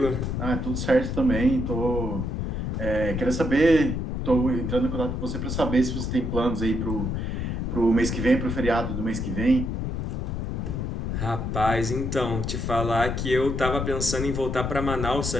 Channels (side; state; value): left; noise; rumble, 2 dB below the sound